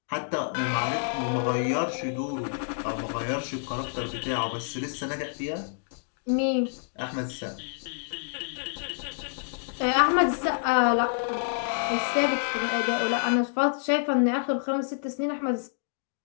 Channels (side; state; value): right; silent; digital silence